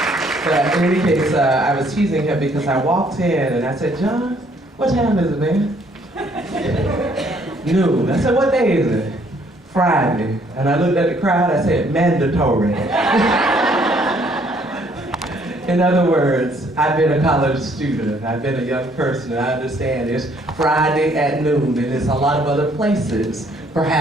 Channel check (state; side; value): normal; both; correlation 0.64